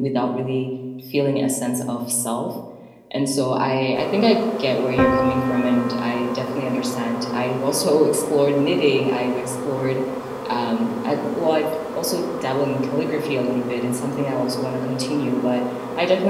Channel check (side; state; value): both; identical; correlation 1.00